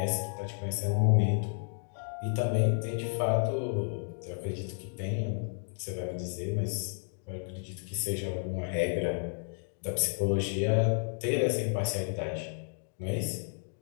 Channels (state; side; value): silent; right; digital silence